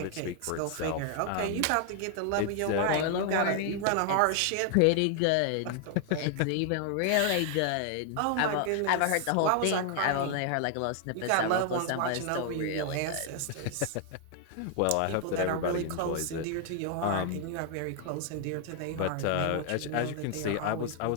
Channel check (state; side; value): different; both; correlation 0.00